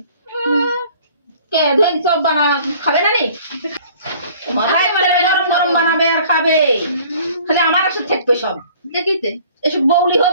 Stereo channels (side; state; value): both; inverted; correlation -0.52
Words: কে ধই সব বানা খাবে না নি মাথায় গরম গরম বানাবে আর খাবে খালি আমার সাথে থাকবে সব দেখিতে এসব বউলি